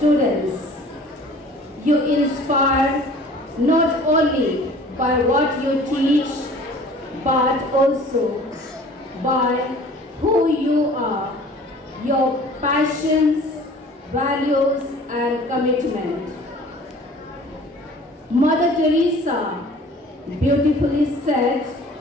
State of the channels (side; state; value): both; normal; correlation 0.48